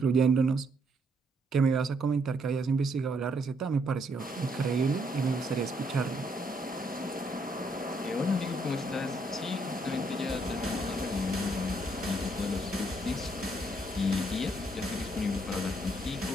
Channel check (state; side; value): normal; both; correlation 0.72